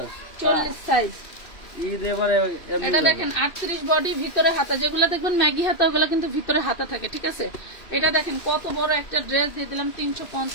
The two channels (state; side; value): late; right; 2.6 ms